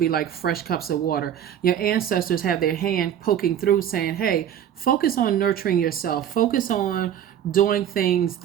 like fresh cups of water. Your ancestors have their hand poking through saying, hey, focus on nurturing yourself. Focus on doing things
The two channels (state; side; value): quieter; left; 10.0 dB